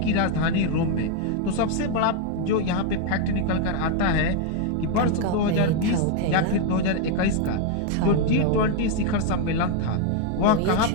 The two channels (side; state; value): both; different; correlation 0.00